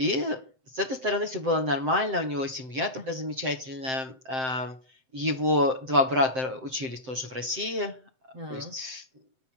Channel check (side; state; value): left; late; 7.7 ms